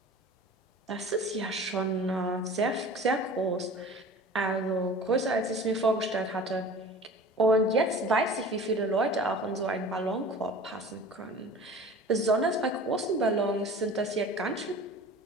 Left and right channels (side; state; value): both; normal; correlation 0.41